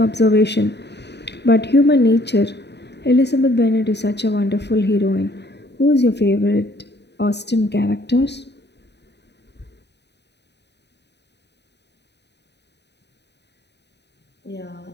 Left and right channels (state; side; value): late; right; 0.50 ms